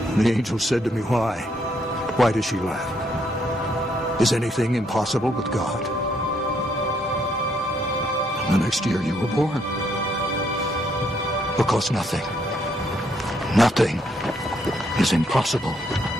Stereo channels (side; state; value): both; normal; correlation 0.72